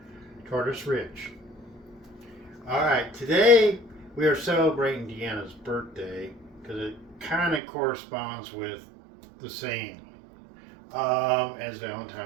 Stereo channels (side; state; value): left; drops out; at 7.6 s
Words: Ridge. Alright, today we are celebrating Deanna's birthday because it kind of corresponds with the same as